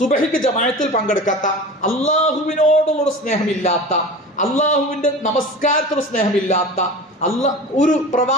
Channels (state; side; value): normal; both; correlation 0.34